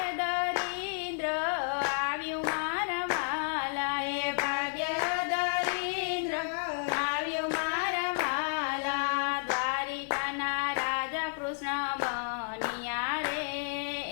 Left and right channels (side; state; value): right; silent; digital silence